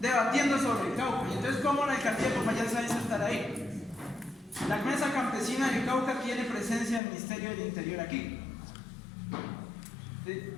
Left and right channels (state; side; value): drops out; right; at 7.0 s